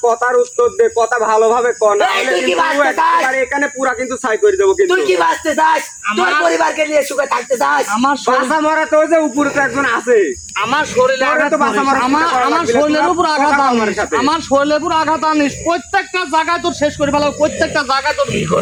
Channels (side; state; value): both; identical; correlation 1.00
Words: কথার উত্তর দে, কথা ভালোভাবে কর, না এই, হলে তুই কি কিন্তু বাঁচতে চাস? একেবারে এখানে পুরা কিন্তু ছাই করে দেবো কিন্তু। তুই কি বাঁচতে চাস? তোর আমার- পরিবারকে নিয়ে সুখে থাকতে চাস? আমার বাসা মরা তো যে উপরে তো একজন আছে। আমার শরীরে তোরা আঘাত তো বাঁচা করিস। মারা আমার চিন্তা করা আমার লাগবে না, শরীরের তোরা উপর আঘাত কথা কর আমার আনিস, সাথে। আমার শরীরের উপর আঘাত আনিস, প্রত্যেকটা জায়গায় তোর শেষ করে ফেলাবো, প্রত্যেকটা জায়গায় তোর।